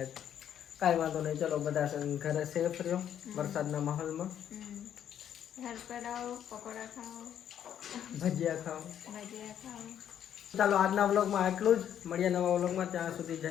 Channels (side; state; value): right; quieter; 9.8 dB